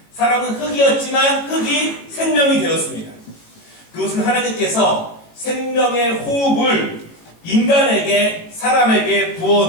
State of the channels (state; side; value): late; right; 18 ms